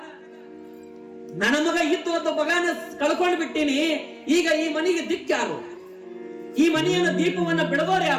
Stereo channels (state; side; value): identical; both; correlation 1.00